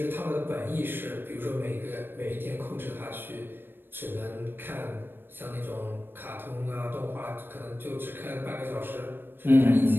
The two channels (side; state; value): left; late; 0.098 ms